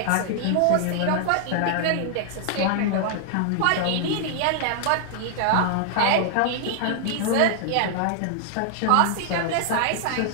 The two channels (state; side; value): different; both; correlation 0.00